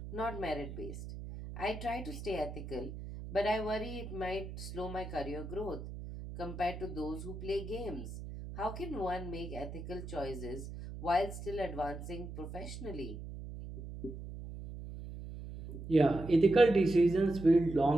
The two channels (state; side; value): noise; right; hum, 10 dB below the sound